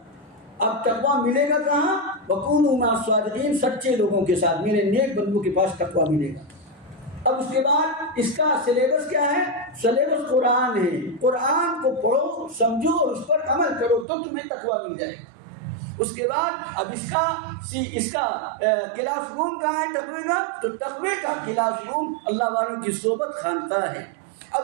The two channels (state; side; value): drops out; left; at 14.1 s